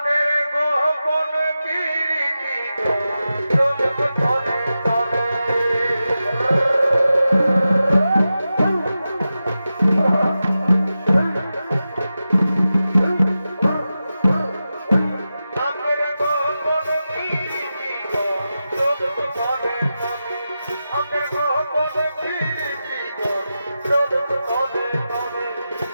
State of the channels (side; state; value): both; inverted; correlation -0.92